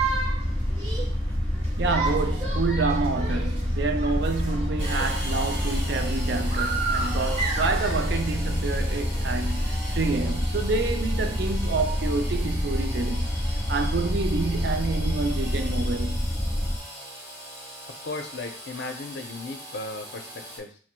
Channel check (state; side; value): normal; both; correlation 0.62